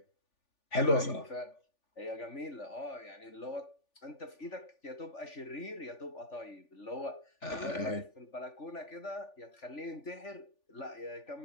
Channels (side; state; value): right; late; 3.4 ms